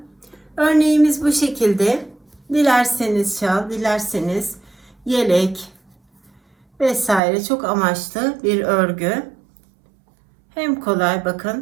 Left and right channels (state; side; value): drops out; left; at 7.2 s